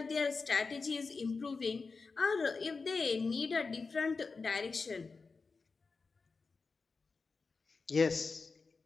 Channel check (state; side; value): quieter; right; 4.4 dB